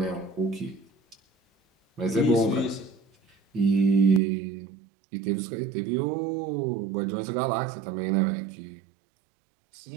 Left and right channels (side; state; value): left; drops out; at 4.2 s